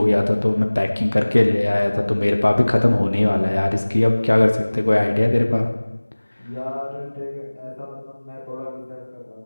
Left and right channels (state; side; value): inverted; both; correlation -1.00